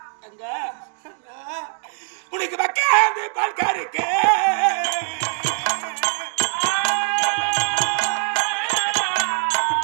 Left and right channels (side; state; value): left; silent; 57 dB below the other